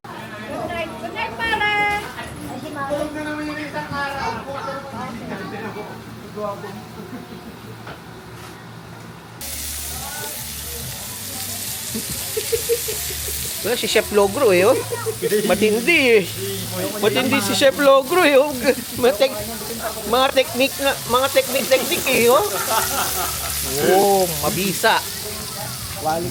Good night, pare! Tulog na naman yung isang araw. Well, si Chef Logro eh, oh. Matindi eh. Matindi si Chef Logro eh, oh. Mga technique eh, oh. Oh, mabisa.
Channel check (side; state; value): both; identical; correlation 1.00